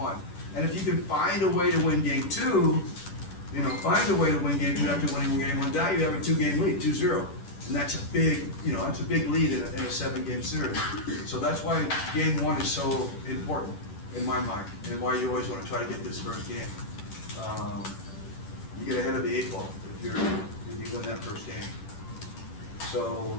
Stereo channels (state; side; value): late; right; 10 ms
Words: And if you can find a way to win game 2, find a way to win game 2 after winning game 1, now you have a 2-game lead, 2-0. And that's a big, that's a big lead in a 7-game series. So that's why game 1 is so important in my mind, and why you always want to try to get this first game. You get ahead of the 8 ball if you win that first game. So